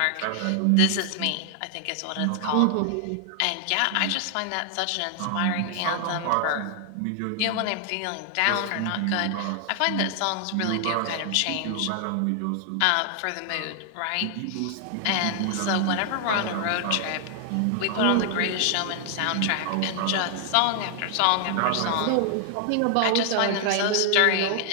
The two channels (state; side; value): different; both; correlation 0.00